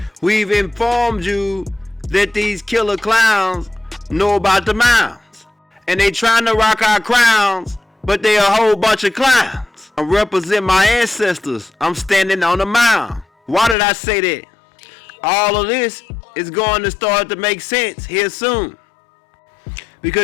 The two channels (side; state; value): right; drops out; at 13.8 s